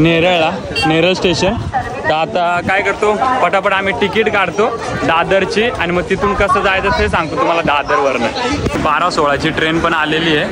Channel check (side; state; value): both; identical; correlation 1.00